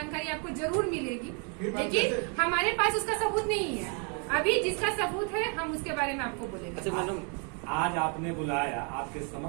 आपको जरूर मिलेगी, लेकिन हमारे पास उसका सबूत नहीं है। अभी जिसका सबूत है हम उसके बारे में आपको बोलेंगे। अच्छा मैडम, आज आपने बुलाया, आपके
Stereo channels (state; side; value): quieter; left; 37.4 dB